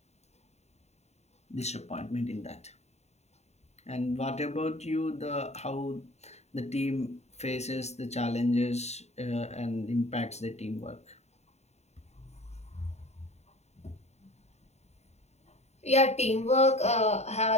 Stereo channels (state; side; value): late; right; 0.32 ms